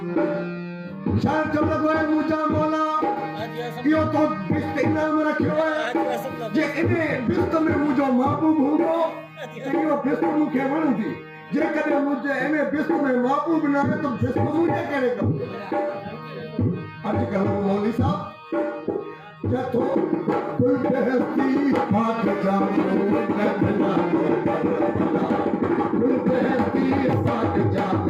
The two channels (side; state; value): both; identical; correlation 1.00